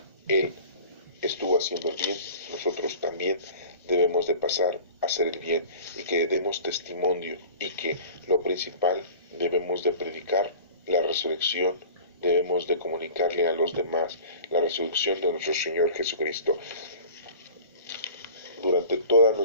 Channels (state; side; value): inverted; both; correlation -0.42